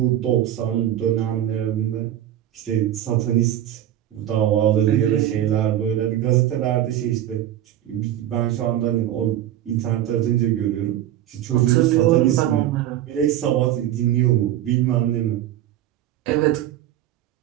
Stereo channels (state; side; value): quieter; left; 12.2 dB